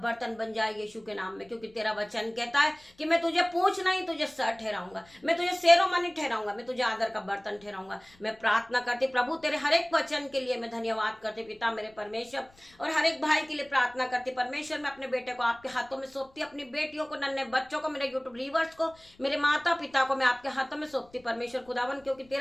बन जाए यीशु के नाम में। क्योंकि तेरा वचन कहता है कि मैं तुझे पूछ नहीं, तुझे सर ठहराऊंगा, मैं तुझे शेरोमणि ठहराऊंगा, मैं तुझे आदर का बर्तन ठहराऊंगा। मैं प्रार्थना करती प्रभु तेरे हर एक वचन के लिए मैं धन्यवाद करती पिता मेरे परमेश्वर, और हर एक भाई के लिए प्रार्थना करती परमेश्वर। मैं अपने बेटे को आपके हाथों में सौंपती, अपनी बेटियों को, नन्हे बच्चों को, मेरे यूट्यूब रीवर्स को, मेरे माता पिता को मैं आपके हाथों में सौंपती परमेश्वर खुदावन। क्योंकि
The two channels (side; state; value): left; noise; rumble, 29 dB below the sound